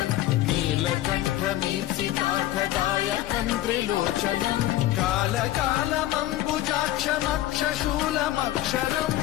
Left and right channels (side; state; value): right; quieter; 14.7 dB